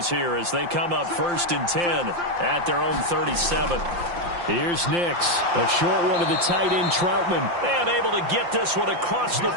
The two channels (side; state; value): left; late; 5.8 ms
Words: here as they come up 1st and 10 at their own 37. Here's Nix. A short one to the tight end, Troutman. And able to get this one across the